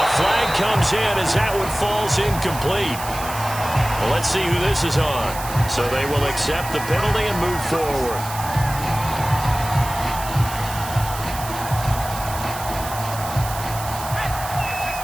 flag comes in as that one falls incomplete. Well, let's see who this is on. So they will accept the penalty and move forward.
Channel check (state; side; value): noise; right; hiss, 11 dB below the sound